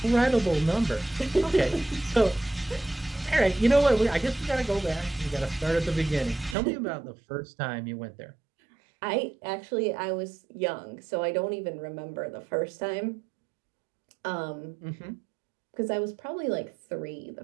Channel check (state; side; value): drops out; left; at 6.6 s